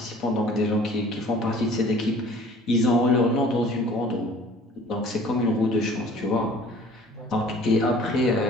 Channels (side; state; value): both; normal; correlation 0.50